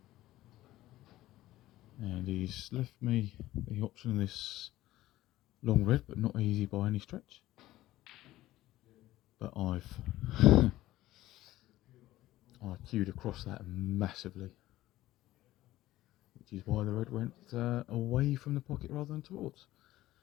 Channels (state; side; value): quieter; right; 15.7 dB